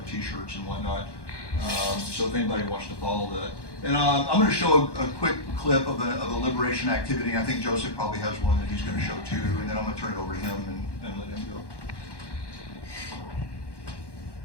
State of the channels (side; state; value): right; late; 1.1 ms